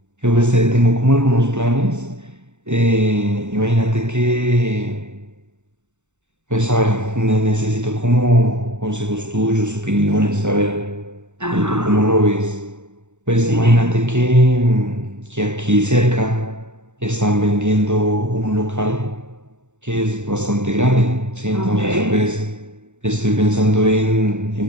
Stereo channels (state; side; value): late; left; 0.84 ms